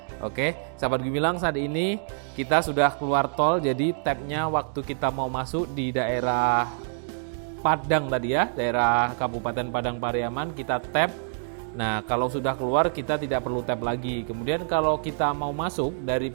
Oke, sahabat Gumilang, saat ini kita sudah keluar tol. Jadi tabnya waktu kita mau masuk di daerah Padang tadi ya, daerah Kabupaten Padang Pariaman, kita tap. Nah, kalau sudah keluar kita tidak perlu tap lagi. Kemudian kalau kita mau masuk dari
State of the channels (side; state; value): left; silent; digital silence